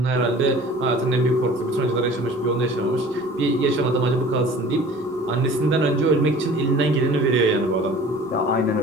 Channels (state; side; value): normal; both; correlation 0.45